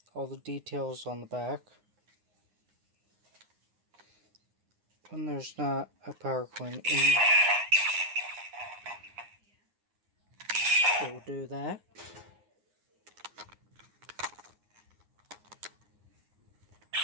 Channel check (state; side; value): late; left; 9.7 ms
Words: All the details on the back. When there's not a power coin in, it will do that.